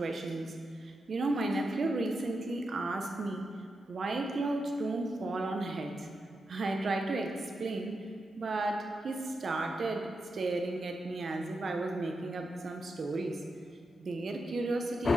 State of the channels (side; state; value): both; normal; correlation 0.87